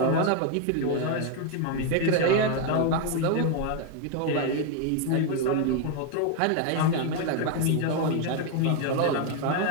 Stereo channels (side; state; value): both; different; correlation 0.01